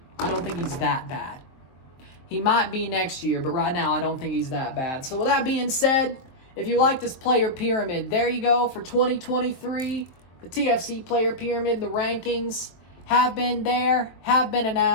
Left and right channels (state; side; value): late; right; 22 ms